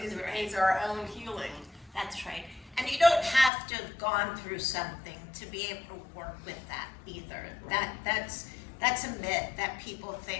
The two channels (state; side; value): drops out; right; at 3.5 s